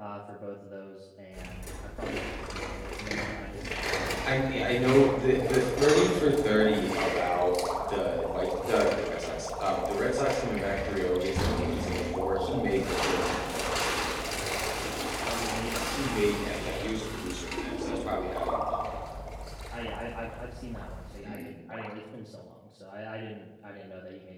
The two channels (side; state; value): both; identical; correlation 1.00